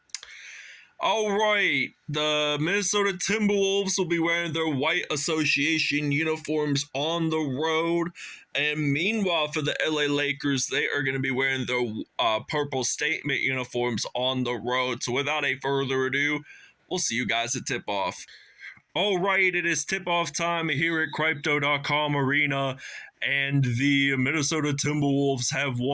All right, the Minnesota Timberwolves will be wearing their white association uniforms on the road. And meanwhile, for the LA Lakers, they are going to be wearing their purple statement uniforms on the road. So without a further ado, we'll see you guys at tip-off. All right, it is tip-off time here at Crypto.com Arena, and the Minnesota Timberwolves have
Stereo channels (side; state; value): both; identical; correlation 1.00